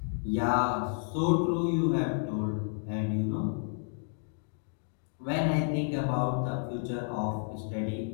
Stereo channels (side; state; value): right; silent; 57 dB below the other